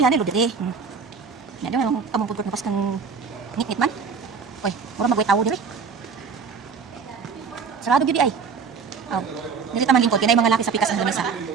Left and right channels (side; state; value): left; quieter; 5.6 dB